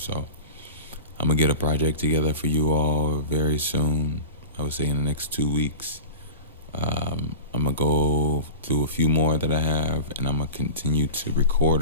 So I'm gonna get a project together for you all very soon. I would say in the next 2 weeks. I'm gonna go through a few more that I have, and I'm gonna continue to record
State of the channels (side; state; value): both; inverted; correlation -0.31